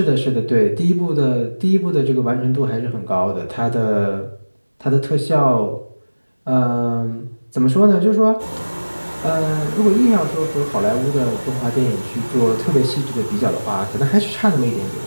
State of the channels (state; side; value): inverted; both; correlation -1.00